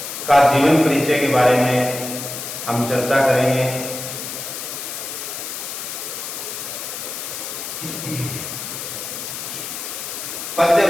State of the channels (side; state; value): left; noise; hiss, 7 dB below the sound